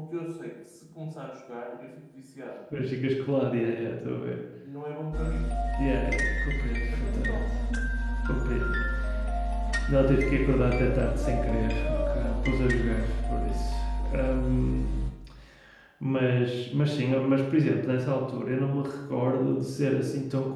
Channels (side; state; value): both; identical; correlation 1.00